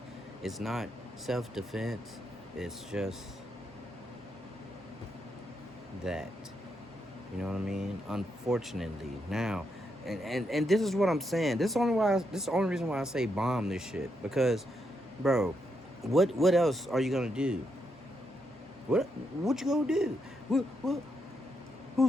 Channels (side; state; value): both; normal; correlation 0.81